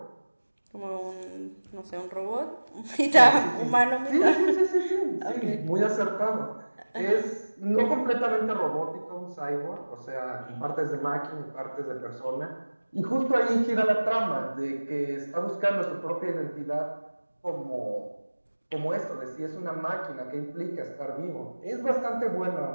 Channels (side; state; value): both; inverted; correlation -1.00